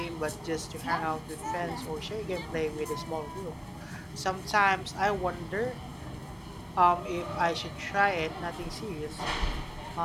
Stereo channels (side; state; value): both; identical; correlation 1.00